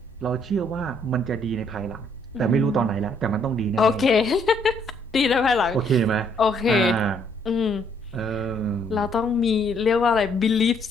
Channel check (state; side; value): normal; both; correlation 0.68